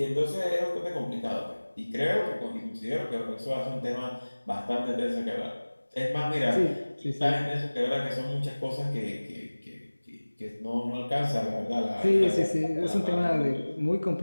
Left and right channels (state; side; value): inverted; both; correlation -1.00